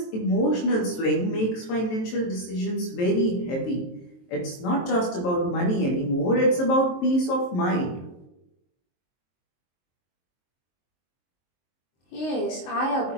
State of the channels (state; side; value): late; right; 23 ms